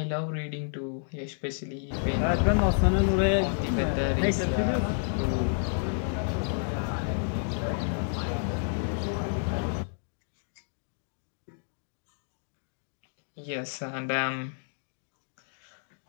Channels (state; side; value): silent; right; digital silence